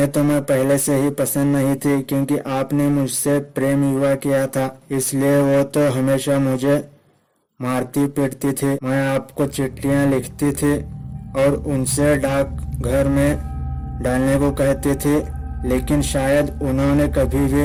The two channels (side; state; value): both; identical; correlation 1.00